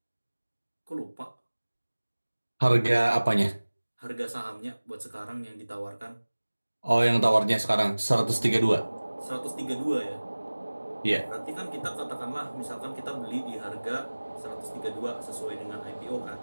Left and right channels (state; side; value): inverted; both; correlation -1.00